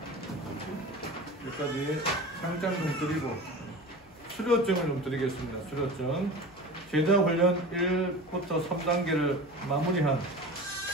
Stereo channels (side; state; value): left; noise; hum, 28 dB below the sound